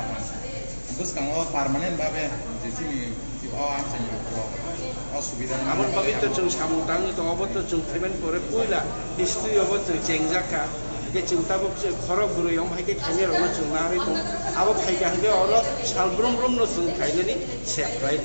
terus kalau permanen babe di sini di असुविधा आमन पवित्र जों सामुदां दङबो जों पेमेन्ट करे पुइला हिस्ट्री अब जों चेंजाका के चिंताबो खरक गुरुयम हायके खाने रनो जों नारि दं आबो फायगा हगे अर सालब्रम ब्रम न जों खायनानि सेफ्राय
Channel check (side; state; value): both; inverted; correlation -1.00